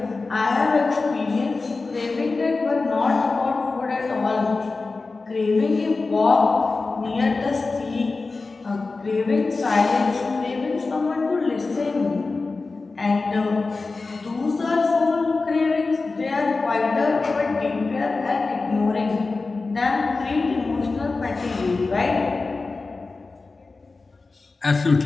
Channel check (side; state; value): right; quieter; 3.8 dB